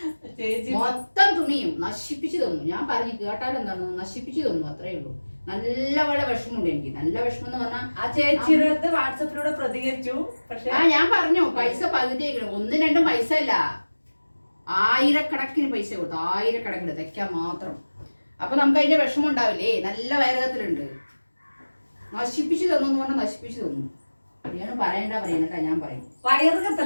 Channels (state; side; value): inverted; both; correlation -1.00